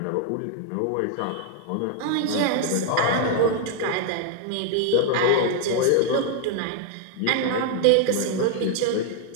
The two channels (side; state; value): both; different; correlation 0.00